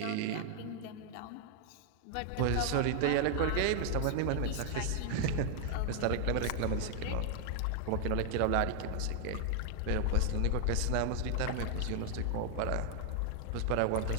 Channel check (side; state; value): both; different; correlation 0.00